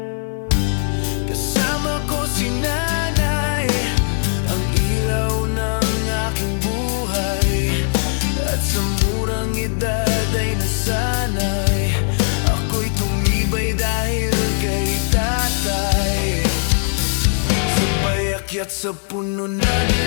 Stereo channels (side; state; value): right; silent; digital silence